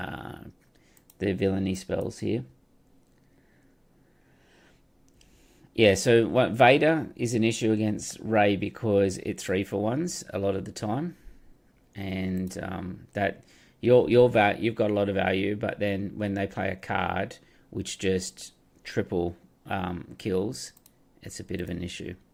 villainy spells here. Yeah, so what Vader is an issue against Rey because it 3-for-1s a lot of the time. And that you've got a lot of value, but then when they play a card which just triple kills, it's a bit of an issue.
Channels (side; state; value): both; identical; correlation 1.00